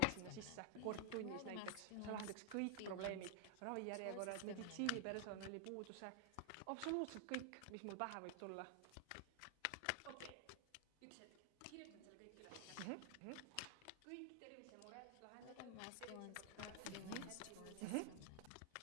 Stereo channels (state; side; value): different; both; correlation 0.00